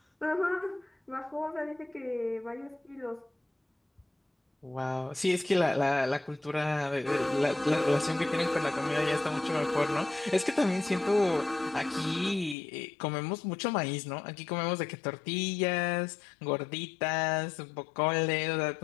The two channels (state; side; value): drops out; right; at 12.6 s